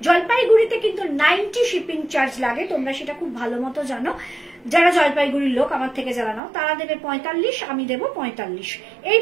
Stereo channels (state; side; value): drops out; left; at 6.4 s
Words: জলপাইগুড়িতে কিন্তু 90 শিপিং চার্জ লাগে, তোমরা সেটা খুব ভালো মতো জানো। যারা জলপাইগুড়ির লোক আমার থেকে যারা নাও তারা দেবে 45, আমি দেবো 45।